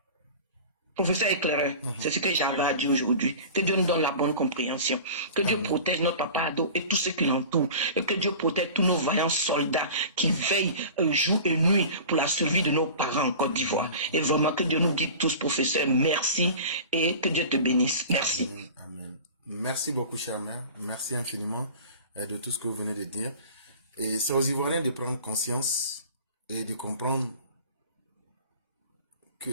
Professeur éclaireur, c'est ce que j'avais à dire aujourd'hui. Que Dieu nous donne la bonne compréhension. Que Dieu protège notre papa Ado et tous ceux qui l'entourent. Et que Dieu protège tous nos vaillants soldats qui veillent jour et nuit pour la survie de nos parents en Côte d'Ivoire. Et vraiment que Dieu nous guide tous, professeur. Merci et que Dieu te bénisse. Merci. Amen. Amen. Merci beaucoup, chère mère. Merci infiniment de tout ce que vous venez de dire. Et c'est aux Ivoiriens de prendre conscience et de comprendre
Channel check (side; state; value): both; inverted; correlation -0.38